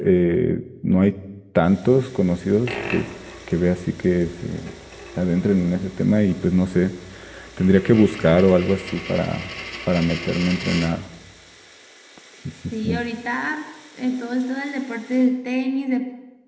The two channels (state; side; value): identical; both; correlation 1.00